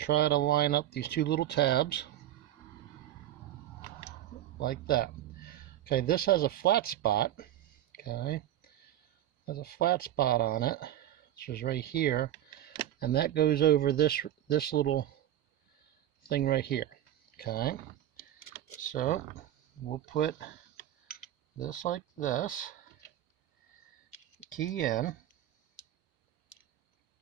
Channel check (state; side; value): quieter; left; 12.3 dB